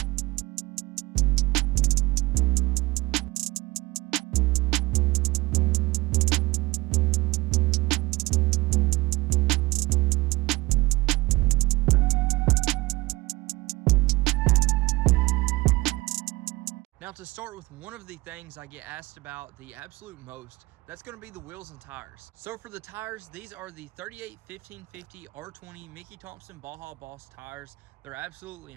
Now, to start with one of the things I get asked about the absolute most, that's going to be the wheels and tires. So for the tires, these are the 38 1550 R20 Mickey Thompson Baja Boss tires. They're absolutely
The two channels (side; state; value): left; quieter; 21.4 dB